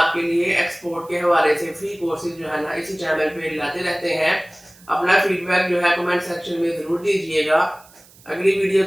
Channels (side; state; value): right; noise; hiss, 26 dB below the sound